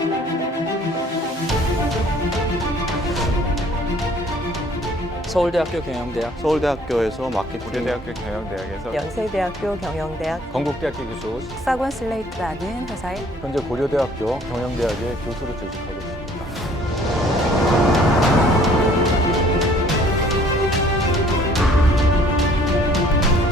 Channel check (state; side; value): normal; both; correlation 0.57